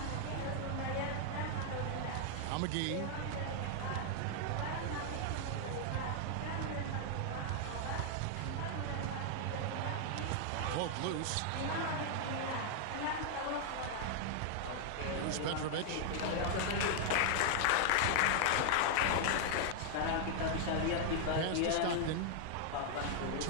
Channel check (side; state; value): both; different; correlation 0.00